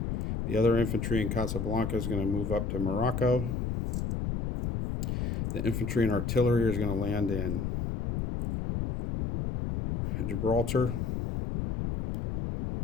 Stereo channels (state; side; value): noise; left; rumble, 2 dB below the sound